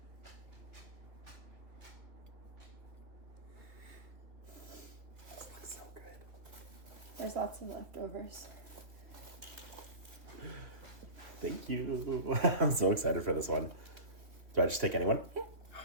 This looks so good. There's lots of leftovers. Thank you. I'm so excited for this one. Do I just take anyone? Yeah.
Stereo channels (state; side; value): late; left; 2.9 ms